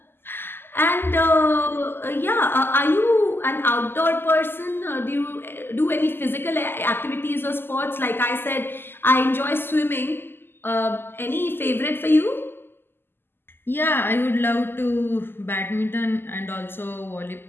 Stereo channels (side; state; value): right; late; 0.10 ms